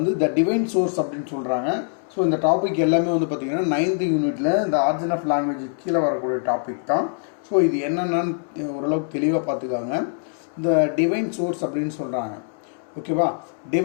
த டிவைன் சோர்ஸ் அப்படின்னு சொல்கிறாங்க. ஸோ இந்த டாபிக் எல்லாமே பார்த்திங்கன்னா 9th யூனிட்டில் இந்த ஆரிஜின் ஆஃப் லாங்குவேஜ் கீழே வரக்கூடிய டாபிக் தான். ஸோ இது என்னென்னு ஓரளவுக்கு தெளிவாக பார்த்துக்காங்க. இந்த டிவைன் சோர்ஸ் அப்படின்னு சொல்கிறாங்க. ஓகேவா?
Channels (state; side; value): silent; right; 63 dB below the other